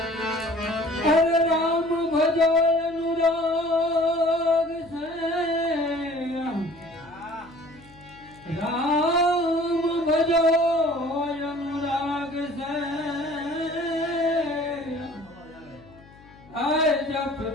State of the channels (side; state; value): left; noise; hum, 24 dB below the sound